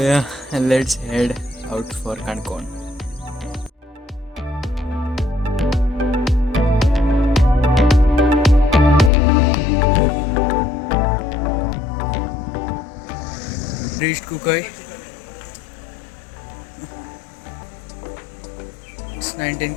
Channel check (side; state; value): right; drops out; at 9.1 s